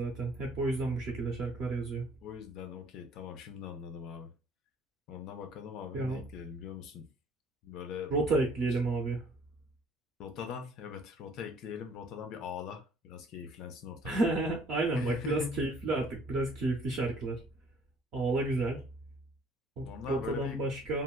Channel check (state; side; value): normal; both; correlation 0.57